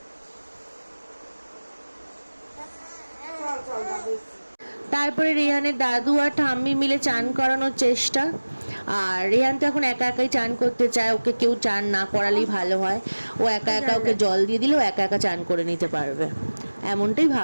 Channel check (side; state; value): both; inverted; correlation -1.00